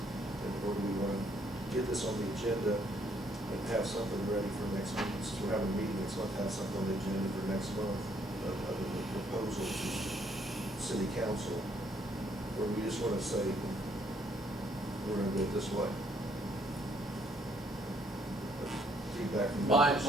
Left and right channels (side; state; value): both; normal; correlation 0.68